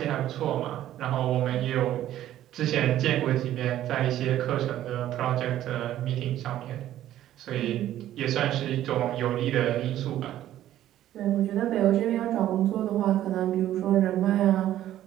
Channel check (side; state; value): left; quieter; 12.7 dB